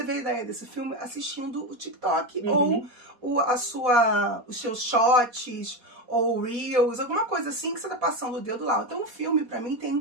a ideia desse filme assistindo o TikTok ou os seus shots ou reels, alguma coisa assim que você tá passando o dedo lá. Então o filme, pra mim,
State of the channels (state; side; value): late; left; 4.2 ms